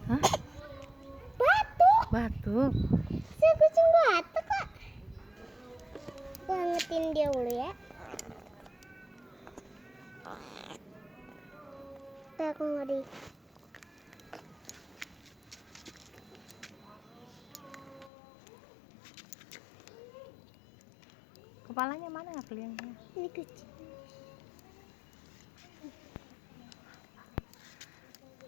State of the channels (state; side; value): drops out; right; at 18.1 s